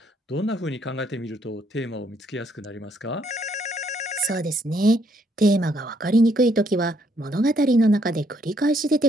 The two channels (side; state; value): both; normal; correlation 0.70